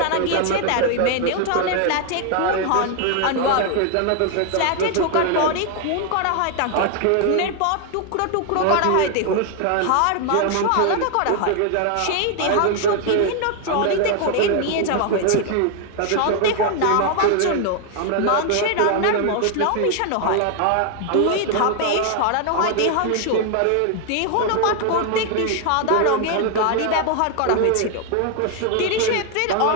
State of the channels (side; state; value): both; different; correlation 0.00